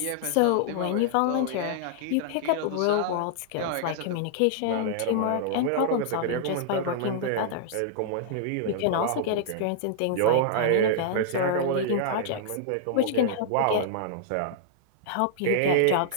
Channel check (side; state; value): both; different; correlation -0.01